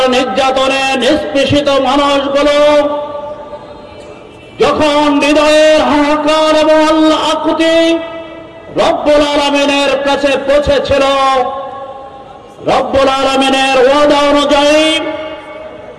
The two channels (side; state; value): both; identical; correlation 1.00